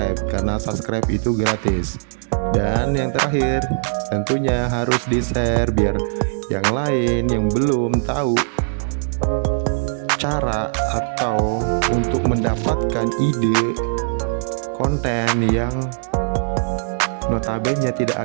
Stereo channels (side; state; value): left; silent; digital silence